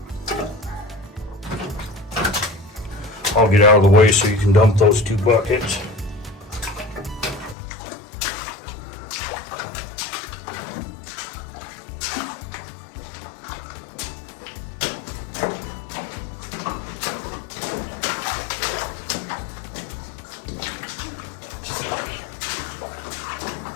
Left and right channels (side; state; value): right; drops out; at 7.6 s